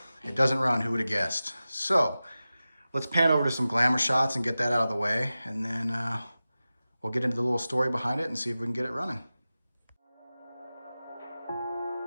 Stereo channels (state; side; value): inverted; both; correlation -0.95